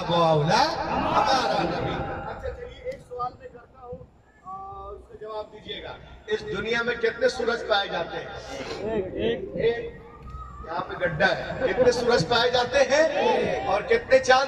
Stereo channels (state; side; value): identical; both; correlation 1.00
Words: و اولیٰ ہمارا نبی۔ اچھا چلیے ایک سوال میں کرتا ہوں اور اس کا جواب دیجیے گا۔ اس دنیا میں کتنے سورج پائے جاتے ہیں؟ ایک۔ یہاں پہ گڈھا ہے۔ کتنے سورج پائے جاتے ہیں اور کتنے